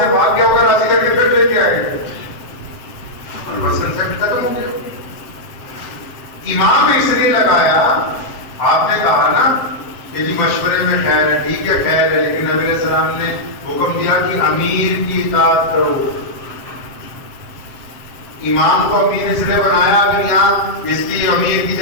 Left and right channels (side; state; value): right; late; 7.7 ms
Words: بھاگ گیا ہوگا راضی کر کے پھر لے کے آئے گے، اور بس کنسپٹ ختم ہو گیا۔ امام اس لیے لگایا، آپ نے کہا نا کہ جی مشورے میں خیر ہے، ٹھیک ہے خیر ہے، لیکن نبی علیہ السلام نے حکم دیا کہ امیر کی اطاعت کرو۔ امام کو امیر اس لیے بنایا، اگر یہاں اس کی امیر کی